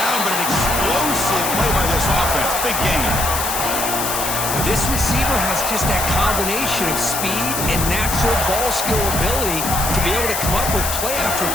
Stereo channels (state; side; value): noise; left; hiss, 2 dB below the sound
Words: but an explosive play by this offense. Big gain. This receiver has just that combination of speed and natural ball skill ability to be able to come up with play after